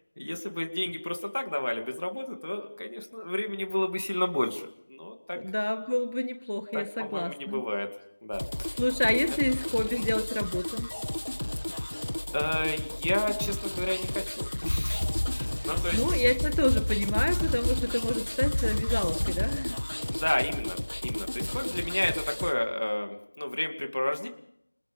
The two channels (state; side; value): inverted; both; correlation -1.00